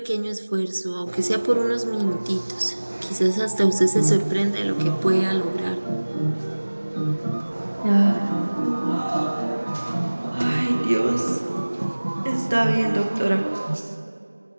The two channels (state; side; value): inverted; both; correlation -1.00